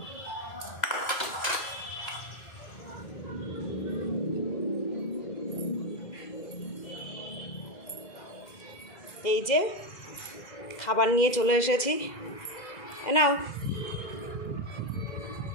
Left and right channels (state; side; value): late; right; 2.0 ms